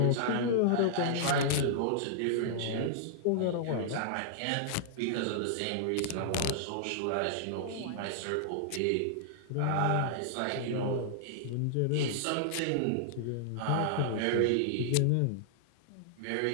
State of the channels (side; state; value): both; different; correlation -0.01